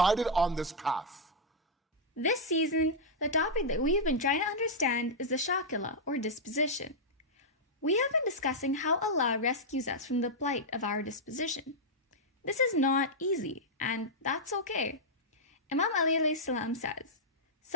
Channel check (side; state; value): both; normal; correlation -0.06